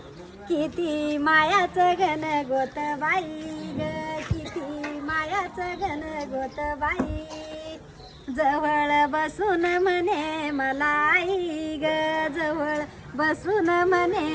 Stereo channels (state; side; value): identical; both; correlation 1.00